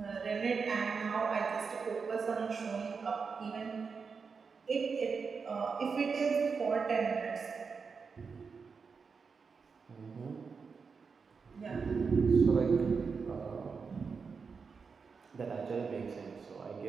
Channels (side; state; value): left; quieter; 5.3 dB